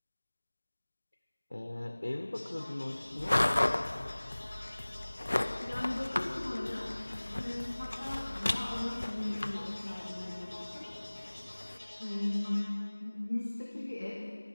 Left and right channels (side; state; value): both; inverted; correlation -1.00